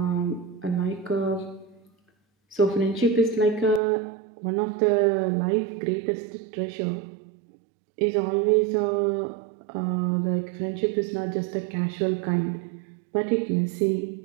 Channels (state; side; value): drops out; left; at 3.8 s